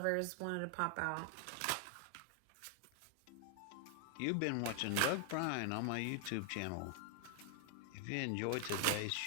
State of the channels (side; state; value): both; different; correlation 0.00